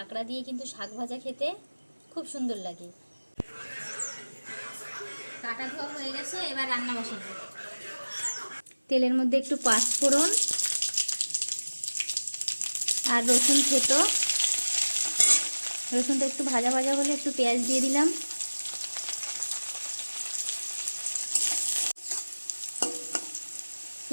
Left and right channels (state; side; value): inverted; both; correlation -1.00